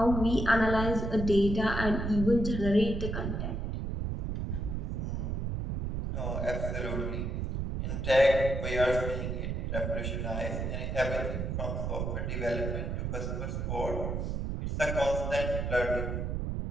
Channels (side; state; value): right; noise; rumble, 2 dB below the sound